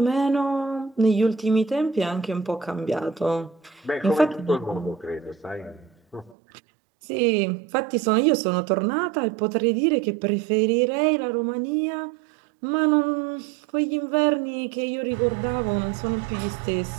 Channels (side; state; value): left; drops out; at 6.4 s